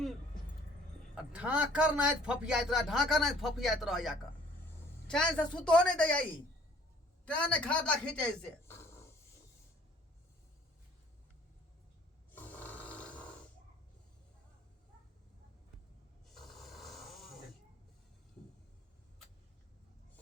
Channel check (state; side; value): normal; both; correlation 0.55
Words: ढाकर नहीं फपियात रहा ढाकर नहीं फपियात रहा जाकर चैन से सुतो नहीं दे आई तेने खाता खींचे से